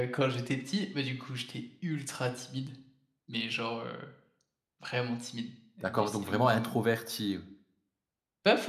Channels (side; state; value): both; identical; correlation 1.00